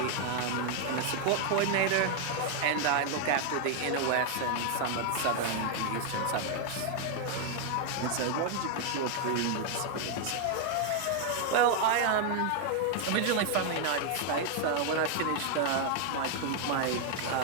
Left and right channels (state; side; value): different; both; correlation 0.00